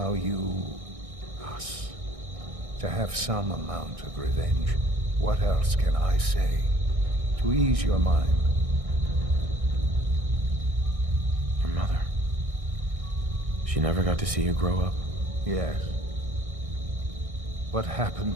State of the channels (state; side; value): late; left; 1.6 ms